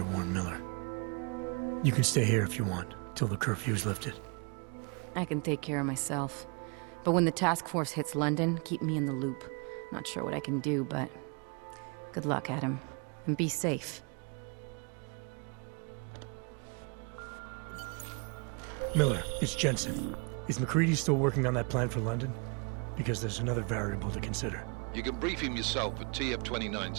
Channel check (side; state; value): left; quieter; 34.0 dB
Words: warn Miller. You can stay here if you want, till the curfew's lifted. I can take care of myself. But when the task force hits London, keep me in the loop. Not sure what I can do, but... good luck, Adam. And be safe. Miller, it's Jensen. Is McCready still working on that plan for London? Because there's another variable to consider. You can brief him yourself at